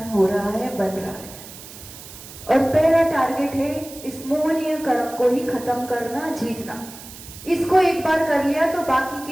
हो रहा है, बन रहा है। और पहला टारगेट है इस मोहनीय कर्म को ही खत्म करना, जीतना। इसको एक बार कर लिया तो बाकी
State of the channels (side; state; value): right; noise; hiss, 16 dB below the sound